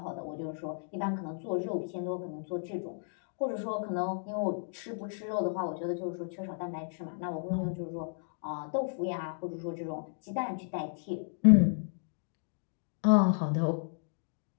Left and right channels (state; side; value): silent; right; digital silence